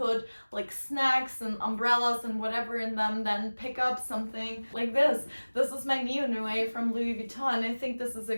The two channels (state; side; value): inverted; both; correlation -1.00